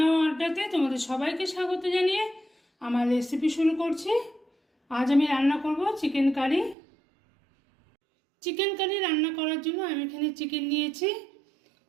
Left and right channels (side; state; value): left; drops out; at 6.8 s